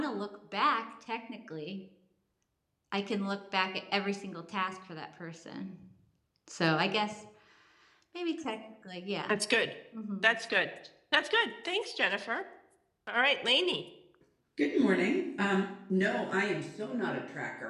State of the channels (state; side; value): identical; both; correlation 1.00